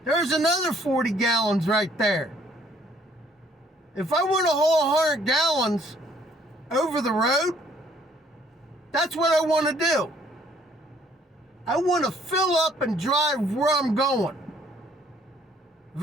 There's another 40 gallons right there. If I want to haul 100 gallons over the road, that's what I want to do. I want to fill up and drive where I'm going. If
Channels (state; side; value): normal; both; correlation 0.62